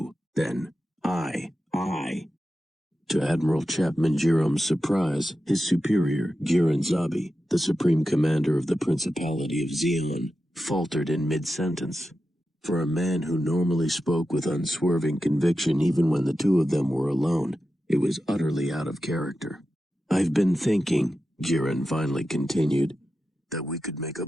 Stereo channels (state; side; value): normal; both; correlation 0.91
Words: then To Admiral Chapman Jerom's surprise, his superior, Giran Zabi, the supreme commander of the Principality of Zeon, faltered in mid-sentence. For a man who normally spoke with unswerving conviction even when the two of them were alone, it was utterly out of character. I've been thinking, Giran finally continued, that we could make a